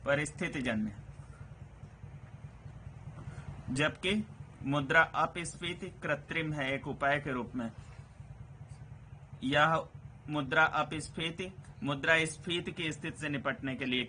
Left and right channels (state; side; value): identical; both; correlation 1.00